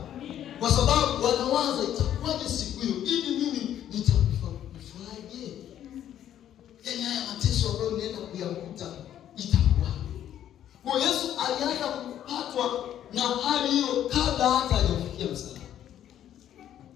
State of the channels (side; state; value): right; quieter; 10.9 dB